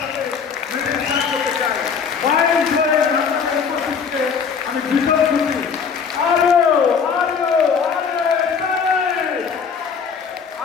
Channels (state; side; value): quieter; right; 6.2 dB